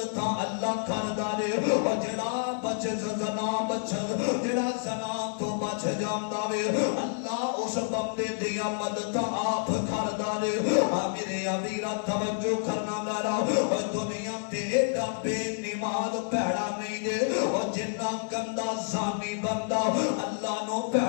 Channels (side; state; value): right; silent; 59 dB below the other